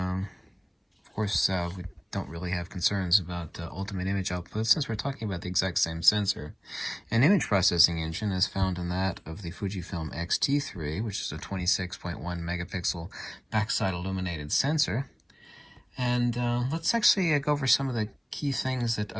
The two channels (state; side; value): identical; both; correlation 1.00